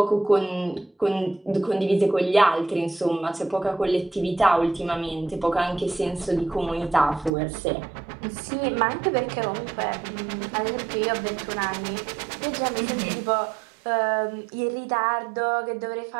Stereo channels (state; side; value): drops out; left; at 7.3 s